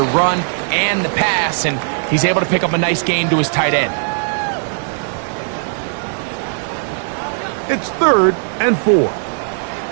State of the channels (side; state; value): left; silent; digital silence